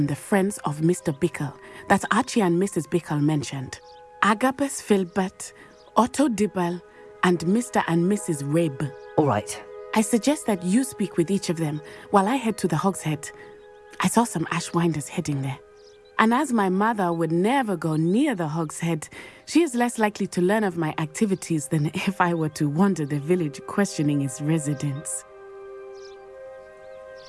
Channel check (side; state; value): both; identical; correlation 1.00